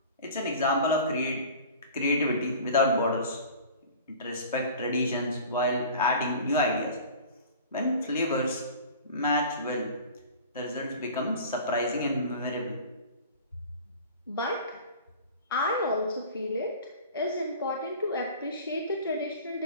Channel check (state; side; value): inverted; both; correlation -0.41